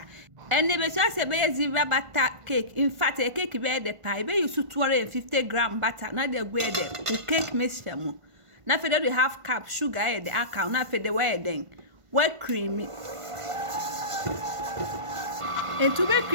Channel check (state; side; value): late; left; 1.5 ms